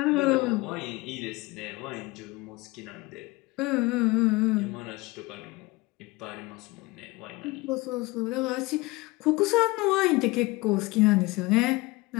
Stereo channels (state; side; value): quieter; right; 22.3 dB